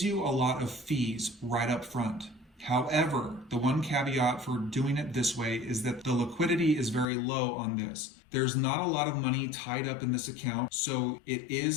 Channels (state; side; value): drops out; right; at 7.1 s